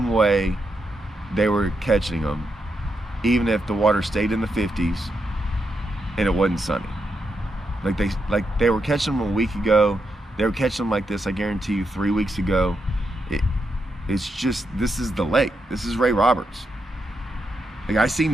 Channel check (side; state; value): both; normal; correlation 0.83